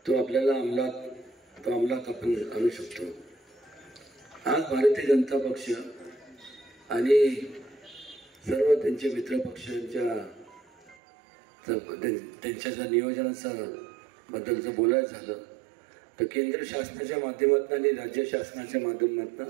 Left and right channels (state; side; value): drops out; left; at 11.0 s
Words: तो आपल्याला अंमलात आपण आणू शकतो. आज भारतीय जनता पक्ष आणि सर्व त्यांचे मित्र पक्षांच्या त्यांच्या जर नियोजनाचं बद्दलचं बोलायचं झालं तर केंद्र शासनाच्या माध्यमातून आणि राज्य शासनाच्या